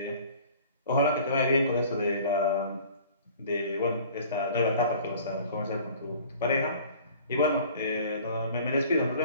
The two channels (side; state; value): both; inverted; correlation -0.48